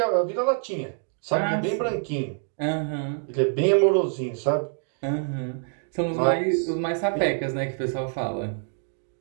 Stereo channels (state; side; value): silent; left; 61 dB below the other